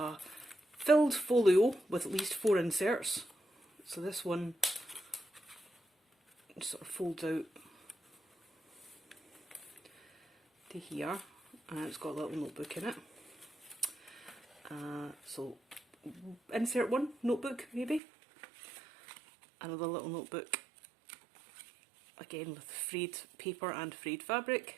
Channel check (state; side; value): drops out; left; at 18.0 s